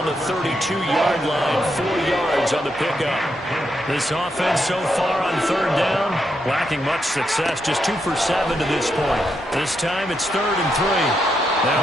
the 32-yard line. 4 yards on the pickup. This offense so far on 3rd down, lacking much success. Just 2 for 7 to this point. This time it's 3rd and 3.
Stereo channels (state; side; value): normal; both; correlation 0.81